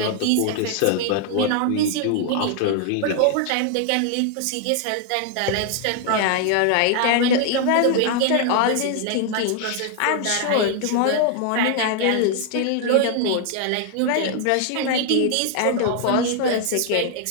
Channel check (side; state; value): both; different; correlation 0.00